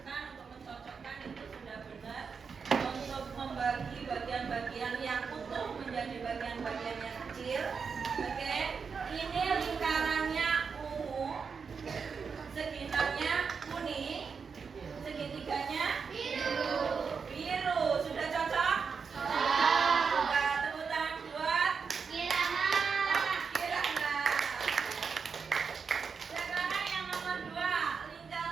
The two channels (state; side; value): quieter; left; 5.7 dB